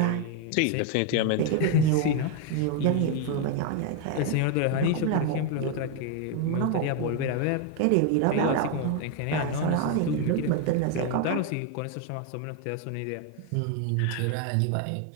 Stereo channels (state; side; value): different; both; correlation 0.01